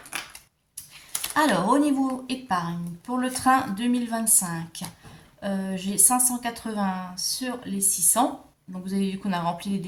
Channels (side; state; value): both; identical; correlation 1.00